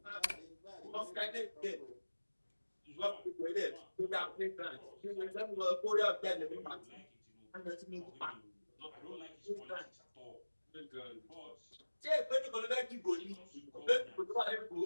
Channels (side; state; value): both; inverted; correlation -1.00